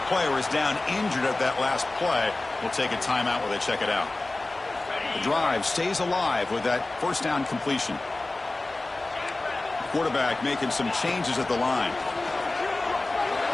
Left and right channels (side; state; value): right; quieter; 3.0 dB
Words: player is down injured at that last play. We'll take a timeout while they check it out. The drive stays alive with that first down completion. Quarterback making some changes at the line.